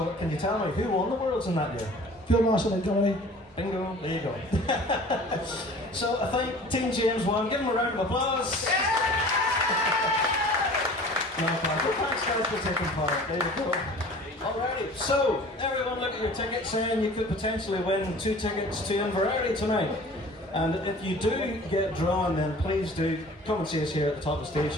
can you tell me who won the Worlds in that year? Phil Marshall and Dominic. Bingo, there you go. So, I think Team James won. Give them a round of applause. No, thanks guys for taking part. There you go. Alrighty, so everyone look at your tickets and you could potentially win 2 tickets to Inverary tonight. And if you do get drawn, then please do come and see us here at the top of the stage.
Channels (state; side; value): normal; both; correlation 0.45